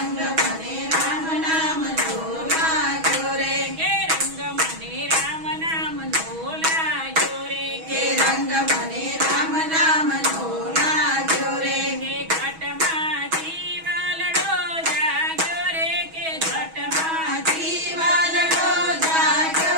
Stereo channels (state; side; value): late; left; 6.2 ms